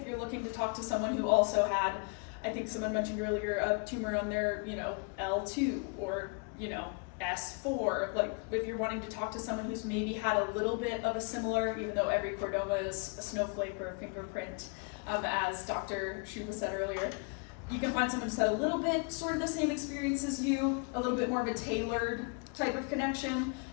you're looking to talk to someone who also had, I think someone mentioned earlier, a tumor on their, L2 or, S4. Like if you're wanting to talk to someone who's maybe had a little bit of a similar, even though every chordoma is a snowflake or a fingerprint, as Dr. Shuba said earlier, you can find someone who's had a little bit sort of the same experience as you, a little bit more of a tailored type of connection.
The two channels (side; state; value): right; quieter; 36.1 dB